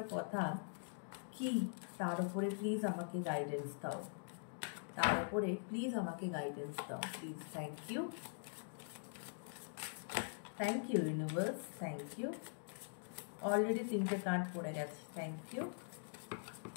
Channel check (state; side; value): silent; right; digital silence